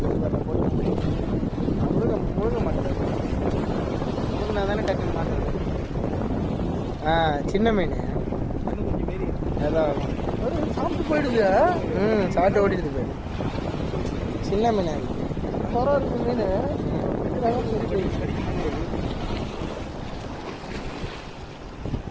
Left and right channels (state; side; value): identical; both; correlation 1.00